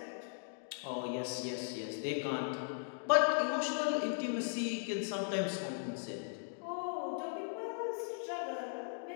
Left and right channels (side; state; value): right; silent; digital silence